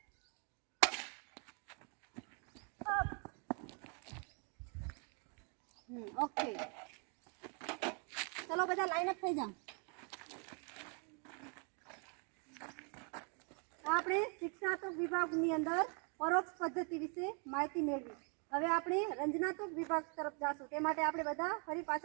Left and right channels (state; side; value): quieter; left; 37.7 dB